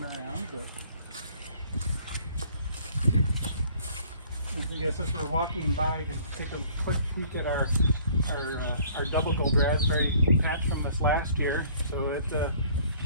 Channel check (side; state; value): both; inverted; correlation -0.56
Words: around, but I guess as we're walking by, you can take a quick peek at our double gold raspberry patch from this last year. So